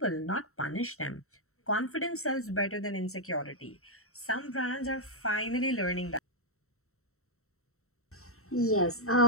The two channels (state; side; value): late; right; 0.63 ms